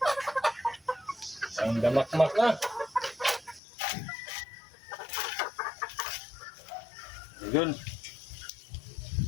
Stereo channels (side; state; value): right; drops out; at 3.6 s